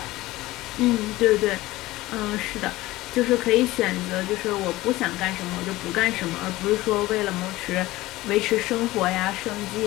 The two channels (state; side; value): quieter; right; 18.0 dB